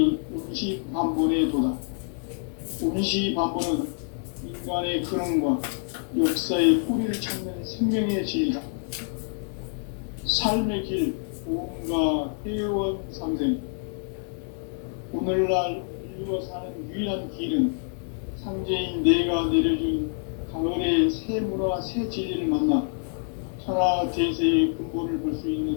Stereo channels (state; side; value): silent; right; 60 dB below the other